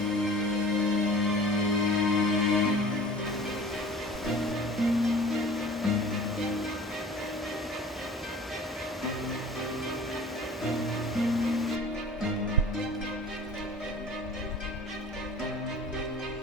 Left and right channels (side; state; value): both; normal; correlation 0.43